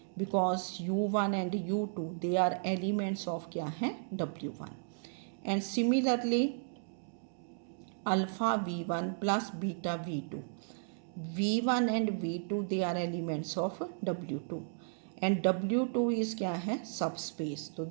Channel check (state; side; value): silent; left; digital silence